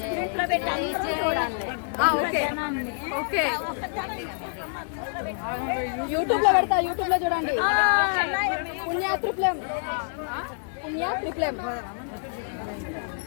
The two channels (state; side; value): silent; right; 60 dB below the other